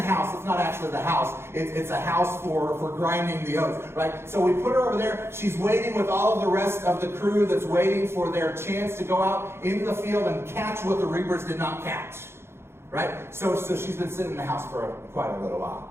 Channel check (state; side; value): late; left; 0.12 ms